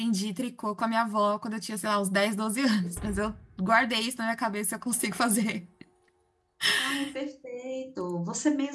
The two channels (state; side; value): identical; both; correlation 1.00